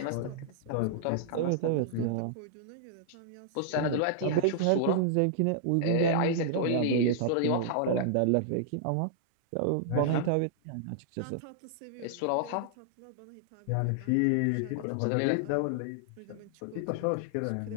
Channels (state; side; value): different; both; correlation -0.01